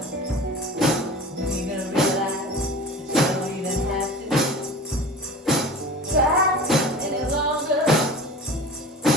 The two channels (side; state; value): both; normal; correlation 0.38